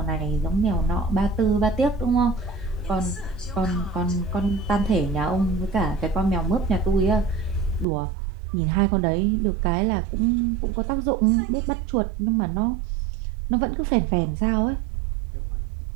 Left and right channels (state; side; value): drops out; left; at 7.9 s